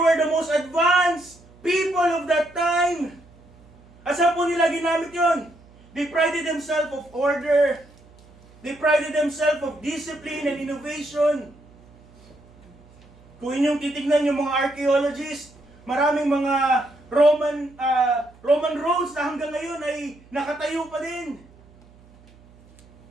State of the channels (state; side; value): noise; right; hum, 26 dB below the sound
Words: the most advanced people of that time. Asa po nila ginamit yon? They prided themselves of order. They prided themselves of discipline and innovation. Kung inyong titignan yung mga archaeologists, maraming mga Roman roads na hanggang ngayon ay nakatayo pa din.